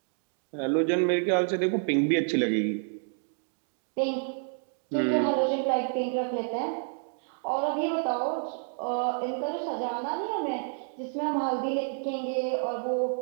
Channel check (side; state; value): left; silent; 58 dB below the other